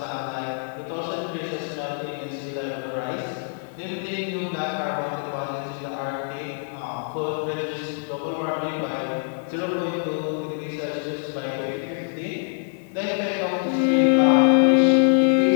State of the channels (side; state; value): right; silent; digital silence